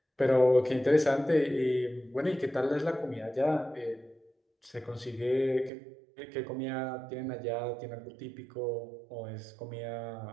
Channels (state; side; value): drops out; left; at 5.7 s